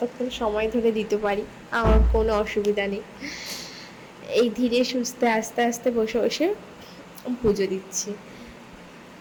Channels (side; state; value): both; identical; correlation 1.00